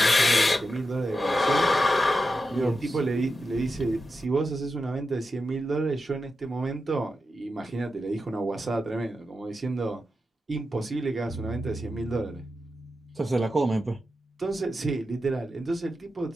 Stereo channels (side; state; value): both; normal; correlation 0.89